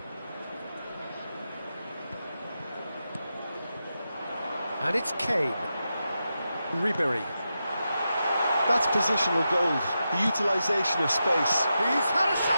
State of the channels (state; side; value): inverted; both; correlation -0.88